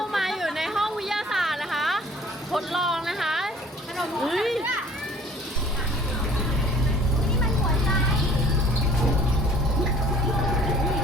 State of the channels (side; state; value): both; normal; correlation 0.52